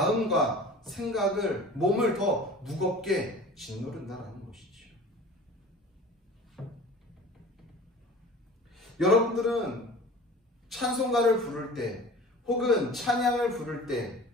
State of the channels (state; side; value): normal; both; correlation 0.41